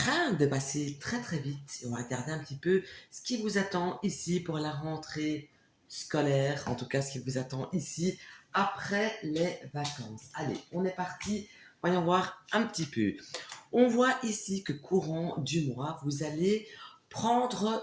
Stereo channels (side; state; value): both; identical; correlation 1.00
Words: de passer très très vite. Et on va regarder un petit peu ce qui vous attend ici pour la rentrée scolaire, en tout cas ce qui vous attend ici après les vacances. Allez, on est parti, voyons voir un petit peu. On voit ici que courant du mois, vous allez prendre